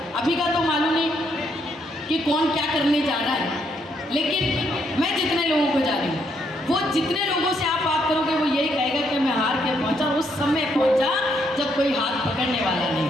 अभी का तो मालूम नहीं कि कौन क्या करने जा रहा है, लेकिन मैं जितने लोगों को जानी हूँ, वो जितने लोगों से आप बात करोगे वो यही कहेगा कि मैं हार के पहुंचा, उस समय पहुंचा जब कोई हाथ पकड़ने वाला नहीं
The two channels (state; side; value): normal; both; correlation 0.74